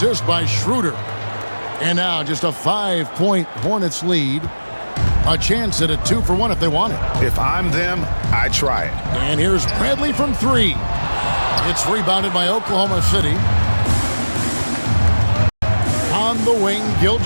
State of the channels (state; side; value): inverted; both; correlation -1.00